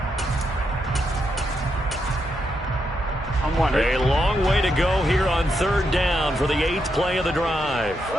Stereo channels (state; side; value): normal; both; correlation 0.82